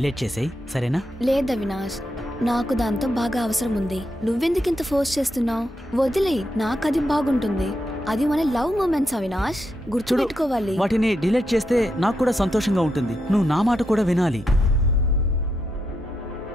చేసేయి, సరేనా? లేదు అవినాష్, నాకు దాంతో బాగా అవసరం ఉంది. నువ్వెందుకు ఇంత ఫోర్స్ చేస్తున్నావు? వదిలేయ్, నాకు అది బాగుంటుంది. అది మన లవ్ మూమెంట్స్ అవినాష్, గుర్తుపెట్టుకోవాలి. వాటిని డిలీట్ చేస్తే నాకు కూడా సంతోషంగా ఉంటుంది. నువ్వు నా మాట కూడా వినాలి.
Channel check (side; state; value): both; normal; correlation 0.83